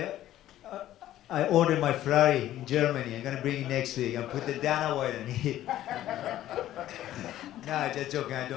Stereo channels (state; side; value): quieter; right; 13.3 dB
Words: my Ferrari in Germany. I'm gonna bring it next week and put the Dana White on it. No, just joking. I